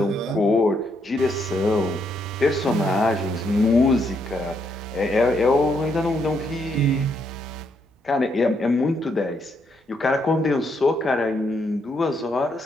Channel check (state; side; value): normal; both; correlation 0.75